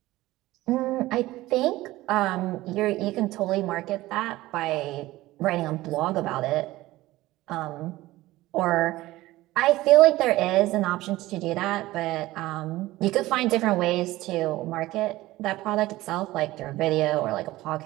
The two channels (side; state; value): left; quieter; 17.5 dB